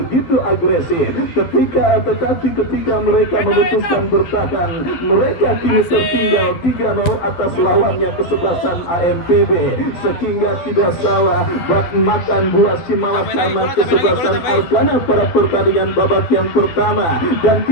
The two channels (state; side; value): late; right; 12 ms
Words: agresif. Tetapi ketika mereka memutuskan bertahan, mereka kini tertinggal 3-0 atas lawannya kesebelasan AMPB. Sehingga tidak salah bak makan buah Simalakama kesebelasan Arkana pada pertandingan babak yang pertama, dan